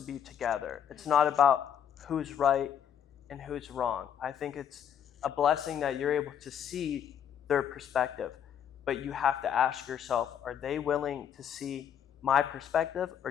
be together. It's not about who's right and who's wrong. I think it's a blessing that you're able to see their perspective. But you have to ask yourself, are they willing to see my perspective, or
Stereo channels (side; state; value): right; quieter; 8.9 dB